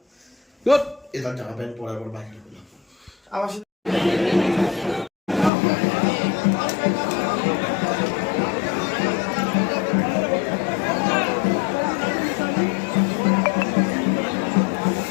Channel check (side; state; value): right; drops out; at 5.5 s